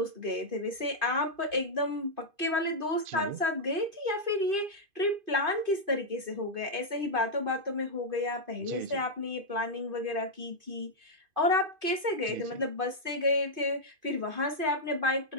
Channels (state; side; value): late; left; 2.5 ms